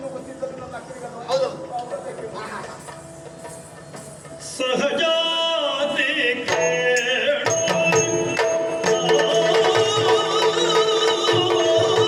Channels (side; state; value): both; identical; correlation 1.00